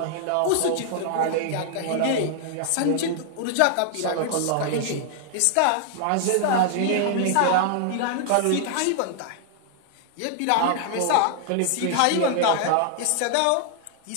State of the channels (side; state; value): both; different; correlation 0.00